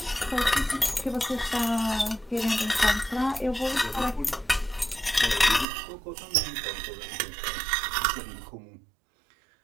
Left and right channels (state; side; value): drops out; left; at 5.7 s